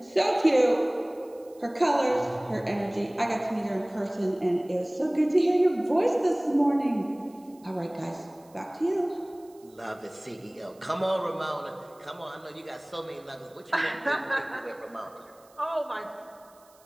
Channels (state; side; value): noise; right; hiss, 29 dB below the sound